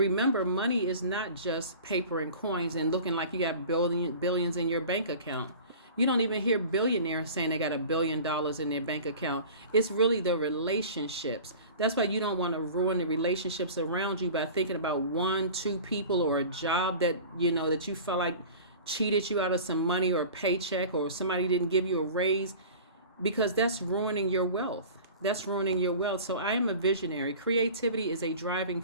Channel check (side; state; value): both; inverted; correlation -0.40